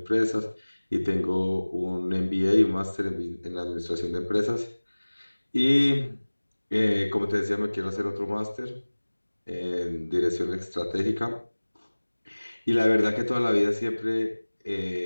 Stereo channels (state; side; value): inverted; both; correlation -1.00